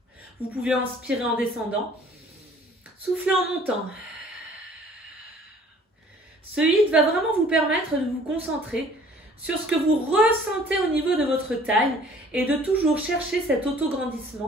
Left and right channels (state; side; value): normal; both; correlation 0.54